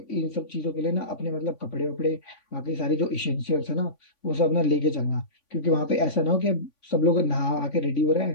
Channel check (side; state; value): right; late; 3.5 ms